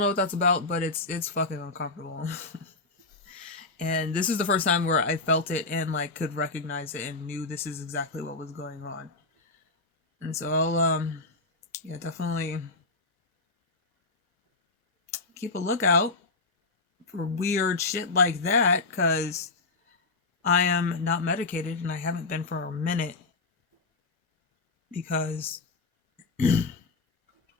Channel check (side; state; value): right; quieter; 3.5 dB